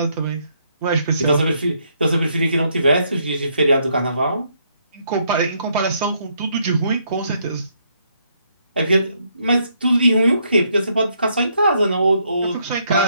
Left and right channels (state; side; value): inverted; both; correlation -0.73